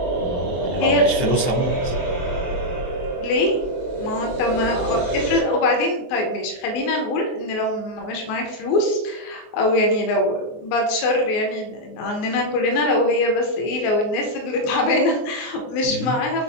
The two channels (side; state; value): right; late; 23 ms